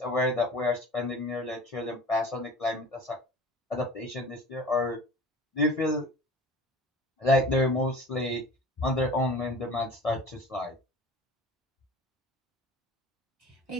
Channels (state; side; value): normal; both; correlation 0.40